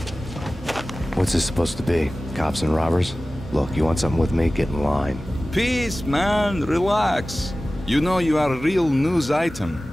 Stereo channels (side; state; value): both; normal; correlation 0.96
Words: What's this supposed to be? Cops and robbers? Look, you want something with me? Get in line. Peace, man. Relax. You know you are a real news